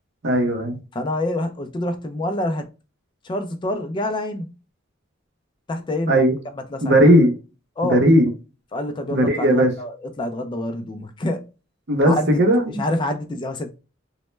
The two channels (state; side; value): normal; both; correlation 0.49